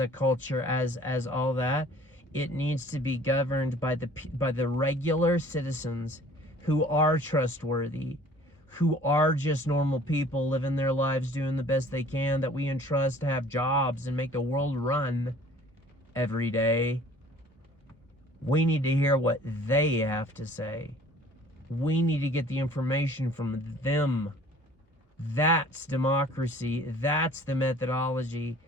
a culture, as all that, it needs to be governed by the regular citizens who are trustworthy, who are just normal people living their lives, doing the best they can, that we entrust to have jobs and make the world run every day. We need to hear what they have to say. We need to get the information from them. That's democracy. That's the methodology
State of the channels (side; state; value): both; normal; correlation 0.51